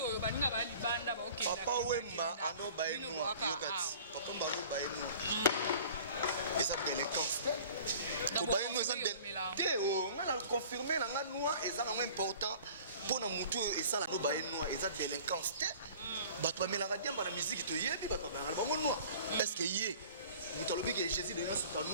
ba ninga ba libanda ba OK papa wemba ando ba eno yokati papa mbalo ba eno eza délinquance ko ba eno eza te o ngana confirmer na ngana eza na important pour na mutu esala no ba eno eza délinquance te bato ba melanga diamba na musique to yebi bato ba ngana bango no est-ce que yé mutalobi que Jésus de Nias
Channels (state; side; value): inverted; both; correlation -0.46